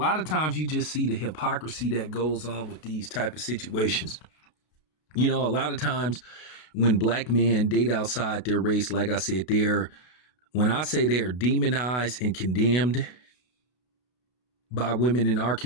of times you just see the hypocrisy that goes on with these type of situations. A lot of times when black men date outside their race, like I said, when I say they're demonized and condemned by women in our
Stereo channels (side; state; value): right; late; 32 ms